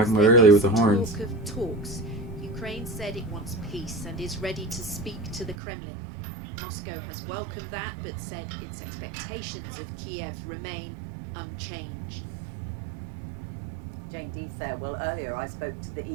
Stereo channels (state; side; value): drops out; left; at 5.6 s